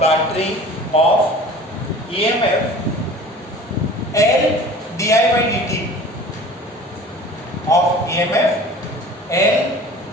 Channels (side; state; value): both; normal; correlation 0.43